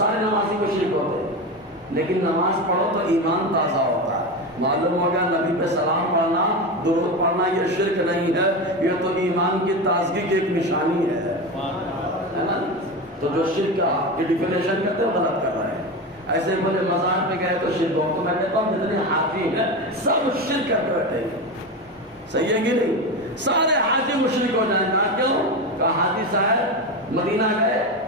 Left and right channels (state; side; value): normal; both; correlation 0.20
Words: نمازی کو شرک ہوتے، لیکن نماز پڑھو تو ایمان تازہ ہوتا ہے۔ معلوم ہوگا نبی پہ سلام پڑھنا، درود پڑھنا یہ شرک نہیں ہے، یہ تو ایمان کی تازگی کی ایک نشانی ہے نا؟ تو جو شرک کی ڈیفینیشن کرتے ہیں غلط کر رہے ہیں۔ ایسے بولے مزار پہ گئے تو شرک ہو، تو میں کہتا ہوں جتنے حاجی ہیں سب شرک کر کے بیٹھے ہیں، صحیح ہے کہ نہیں؟ سارے حاجی مشرک ہو جائیں گا۔ کیوں؟ کہا حاجی صاحب مدینہ گئے،